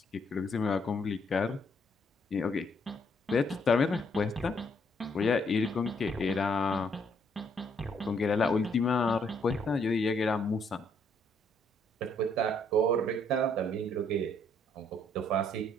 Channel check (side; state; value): both; normal; correlation 0.69